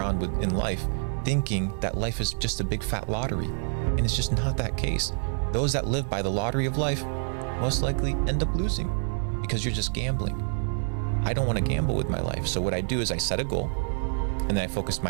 in life thinking that life is just a big fat lottery. And it's just not that case. Those that live by the lottery of life most likely end up losing because you're just gambling. I don't want to gamble with my life. So what I do is I set a goal and then I focus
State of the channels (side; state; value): left; silent; digital silence